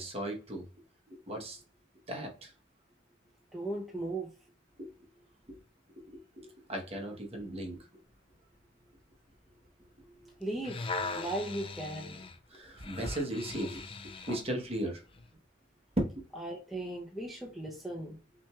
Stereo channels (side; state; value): both; normal; correlation 0.55